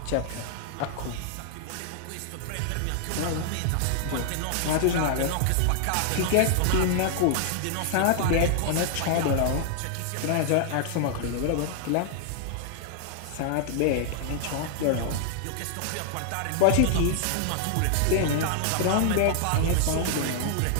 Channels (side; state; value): both; different; correlation 0.00